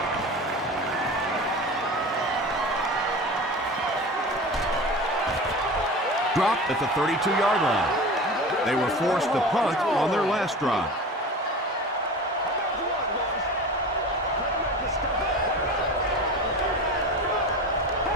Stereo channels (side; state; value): both; normal; correlation 0.33